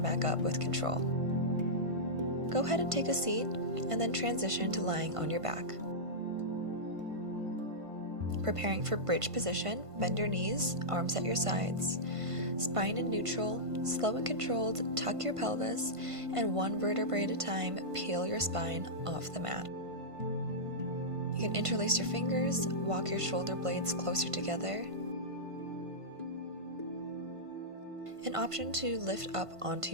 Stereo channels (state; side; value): late; left; 1.5 ms